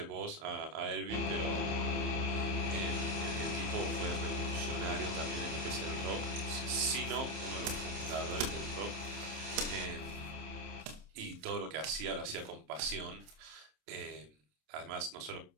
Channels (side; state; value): left; late; 27 ms